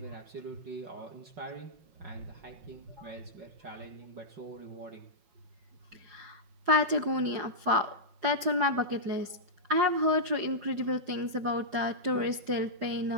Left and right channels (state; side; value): late; left; 5.5 ms